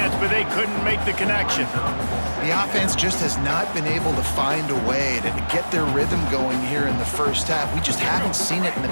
but they couldn't make the connection. The offense just has not been able to find a way to get their rhythm going here in the first half. We just haven't seen it in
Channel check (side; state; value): both; inverted; correlation -1.00